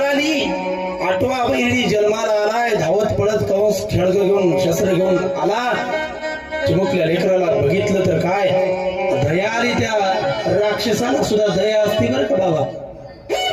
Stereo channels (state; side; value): identical; both; correlation 1.00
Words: 8वा बहिणी जन्माला आलाय. धावत पडत कंस खेळग घेऊन शस्त्र घेऊन आला. चिमुकल्या लेकराला बघितलं तर काय दया आली. त्या राक्षसाला सुद्धा दया असते बरं का बाबा.